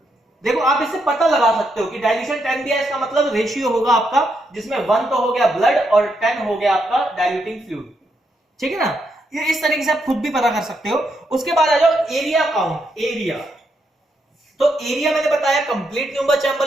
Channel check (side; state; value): both; normal; correlation 0.79